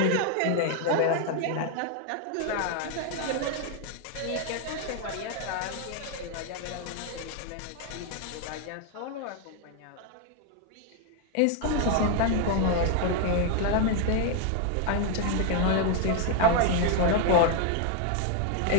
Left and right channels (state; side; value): different; both; correlation 0.00